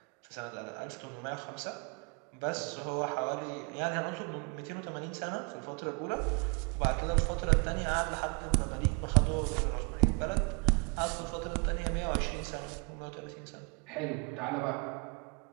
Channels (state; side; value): quieter; left; 34.7 dB